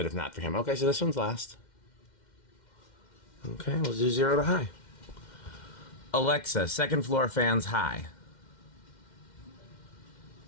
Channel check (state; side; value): late; right; 2.1 ms